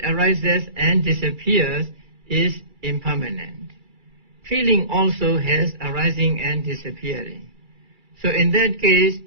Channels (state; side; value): late; left; 2.3 ms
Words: arises and disappears, is impermanent. Feeling also has arising and disappearing. So in that case,